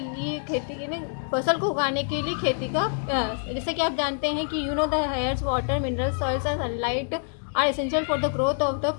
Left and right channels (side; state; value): right; silent; 61 dB below the other